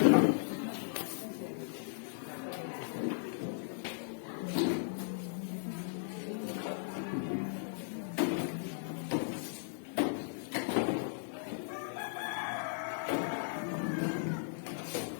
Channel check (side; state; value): right; silent; 53 dB below the other